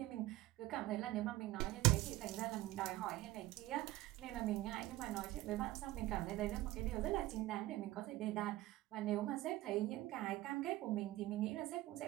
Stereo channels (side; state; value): left; quieter; 17.0 dB